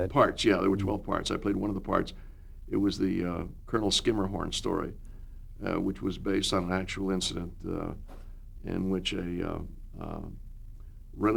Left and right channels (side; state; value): both; identical; correlation 1.00